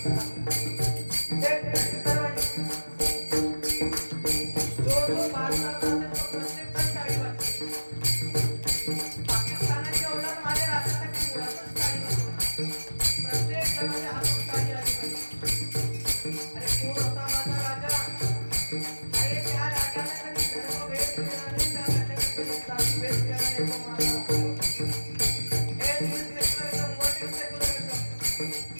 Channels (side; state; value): both; inverted; correlation -1.00